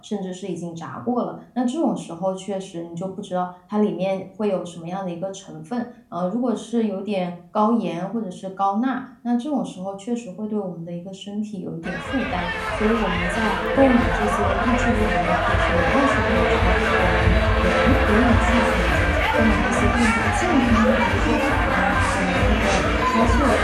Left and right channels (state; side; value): identical; both; correlation 1.00